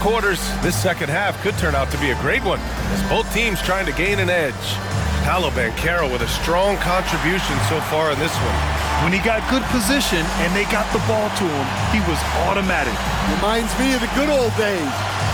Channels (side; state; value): both; identical; correlation 1.00